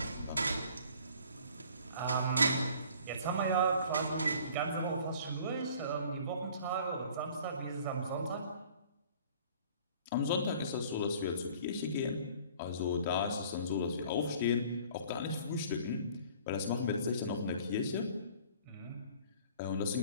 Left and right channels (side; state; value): both; inverted; correlation -0.51